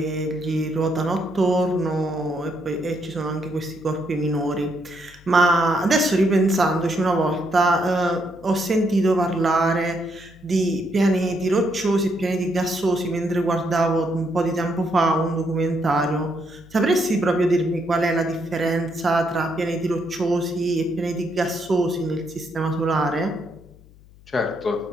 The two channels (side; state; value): left; noise; hum, 24 dB below the sound